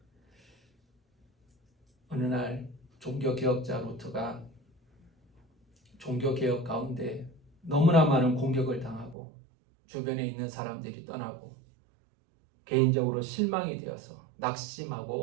어느 날 종교개혁자 루터가 종교개혁 가운데 너무나 많은 공격을 당하고 주변에 있는 사람들이 떠나고 개인적으로 실망이 되어서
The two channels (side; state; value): left; drops out; at 9.2 s